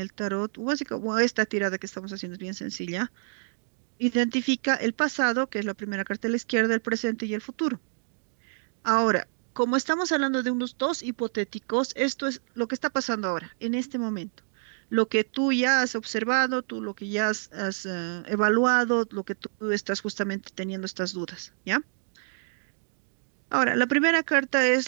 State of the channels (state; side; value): silent; left; digital silence